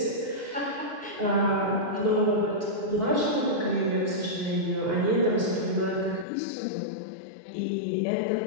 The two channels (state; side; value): drops out; right; at 6.2 s